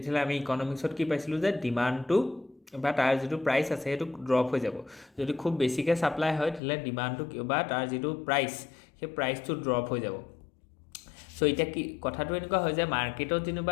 আমি ইকনমিক্সত কি পাইছিলোঁ যে ডিমাণ্ডটো বা তাৰ যিটো প্ৰাইচ আছে সেইটো ড্ৰপ হৈ যাব। যদি খুব বেছিকৈ ছাপ্লাই হয় তেতিয়াহ'লে ডিমাণ্ডটো বা তাৰ যিটো প্ৰাইচ, সেই প্ৰাইচটো ড্ৰপ হৈ যাব। চ' এতিয়া কি কথাটো এনেকুৱা হয় যে মাৰ্কেটত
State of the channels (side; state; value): right; drops out; at 6.6 s